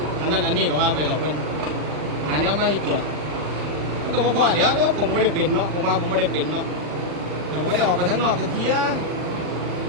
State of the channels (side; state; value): left; late; 40 ms